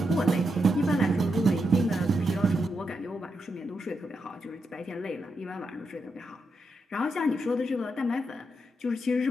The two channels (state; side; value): normal; both; correlation 0.84